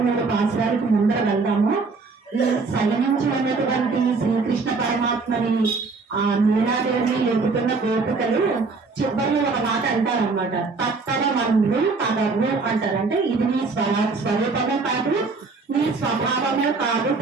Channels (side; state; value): left; quieter; 4.2 dB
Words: పాసురానికి ముందర వెళ్దాము. ఈ సైనించి ఉన్నటువంటి శ్రీకృష్ణ పరమాత్మని ఆ నీలాదేవి ఎదుగుతున్న గోపికలు చివరిలో ఒక మాట అంటారనమాట. తప్పన మందు పదవు అంటారు. అంటే ఇది నీ స్వరూపమే కాదు, నీ స్వభావమే కాదు